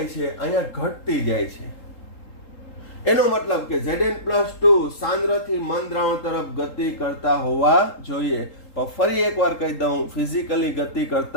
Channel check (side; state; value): right; late; 3.8 ms